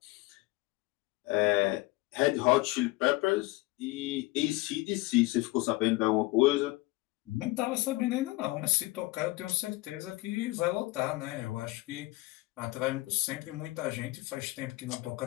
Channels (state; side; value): quieter; right; 20.9 dB